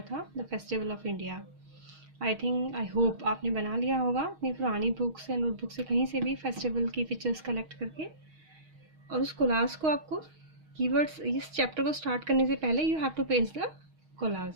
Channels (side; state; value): left; late; 6.4 ms